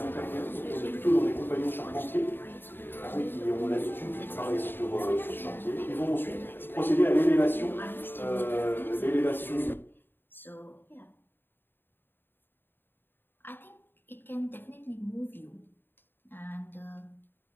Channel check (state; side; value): late; right; 0.097 ms